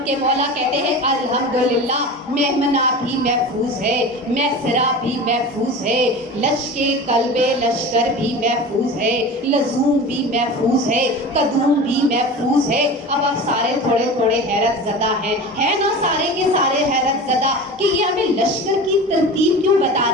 کہ مولا کہتے ہیں الحمدللہ میمنہ بھی محفوظ ہے، میسرہ بھی محفوظ ہے، قلب لشکر بھی محفوظ ہے، لزوم بھی محفوظ ہے، قدوم بھی محفوظ ہے۔ اب آپ سارے تھوڑے تھوڑے حیرت زدہ ہیں نا، سارے کے سارے حیرت زدہ کہ یہ ہمیں لشکر کی ترتیب کیوں بتا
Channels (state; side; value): normal; both; correlation 0.32